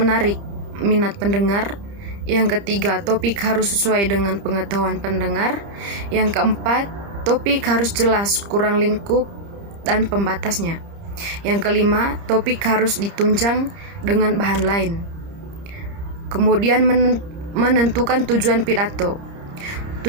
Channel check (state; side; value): late; left; 30 ms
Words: minat pendengar. Yang ketiga, topik harus sesuai dengan pengetahuan pendengar. Yang keempat, topik harus jelas, kurang lingkup dan pembatasnya. Yang kelima, topik harus ditunjang dengan bahan lain. Kemudian menentukan tujuan pidato.